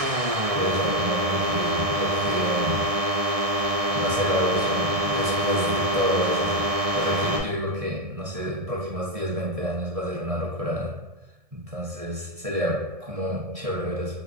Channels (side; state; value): left; late; 1.6 ms